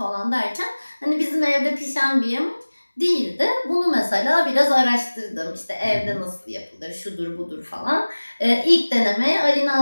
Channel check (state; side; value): inverted; both; correlation -1.00